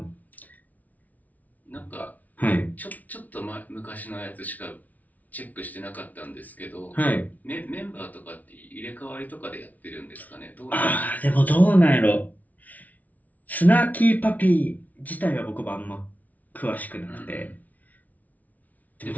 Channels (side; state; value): right; late; 0.074 ms